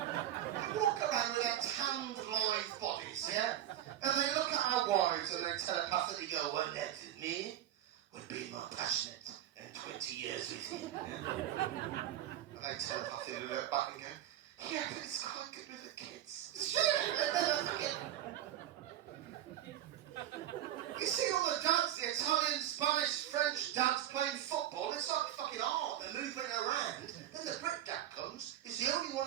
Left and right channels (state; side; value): quieter; left; 12.2 dB